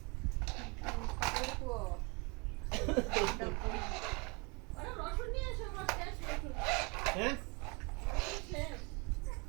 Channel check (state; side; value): quieter; left; 29.8 dB